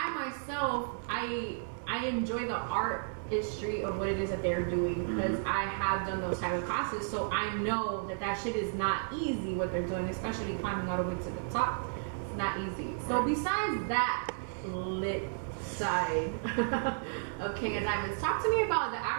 myself, I enjoy the artistry of what it is that they're doing, because I have done those type of classes, so I know that shit is not easy what they're doing, especially climbing all the way to the top. It's not easy. So besides that lit side of King of Diamonds, talk to me about the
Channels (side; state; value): left; silent; 56 dB below the other